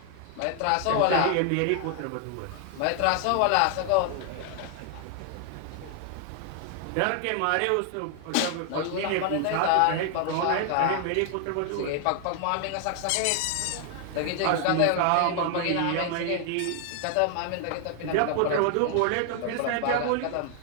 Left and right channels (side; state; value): both; different; correlation 0.00